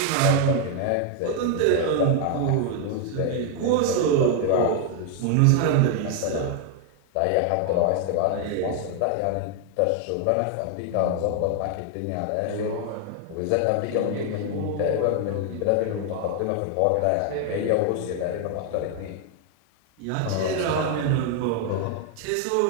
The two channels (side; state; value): both; different; correlation 0.00